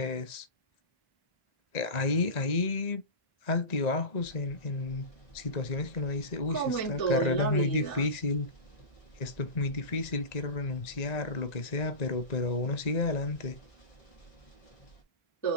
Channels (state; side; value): late; right; 1.9 ms